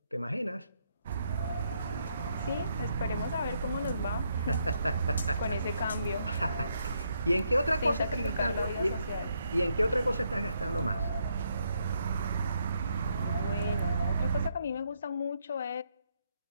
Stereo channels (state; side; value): inverted; both; correlation -0.75